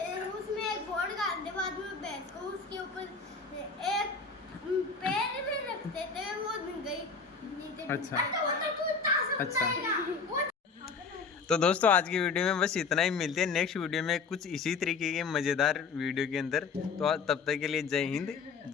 उसमें एक बोर्ड डाल दे, बाद में भैंस को उसके ऊपर एक पैर भी रखते थे, वो गई नीचे। अच्छा अच्छा। तो दोस्तों आज की वीडियो में बस इतना ही। मिलते हैं नेक्स्ट वीडियो में कुछ इसी तरीके के मज़ेदार वीडियो के अंदर। तो तब तक के लिए जय हिंद,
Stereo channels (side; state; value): right; quieter; 5.0 dB